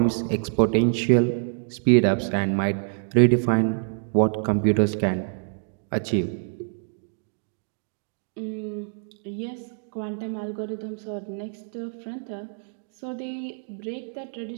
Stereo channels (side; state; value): left; silent; digital silence